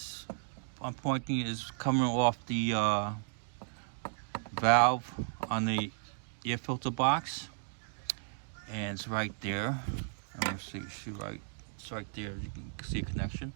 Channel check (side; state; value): left; silent; digital silence